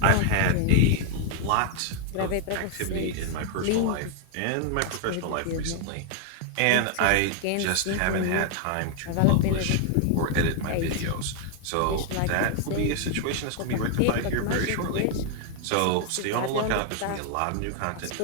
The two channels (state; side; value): different; both; correlation 0.00